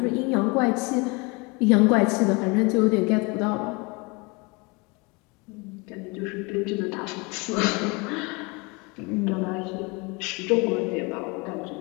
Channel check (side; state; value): right; quieter; 27.8 dB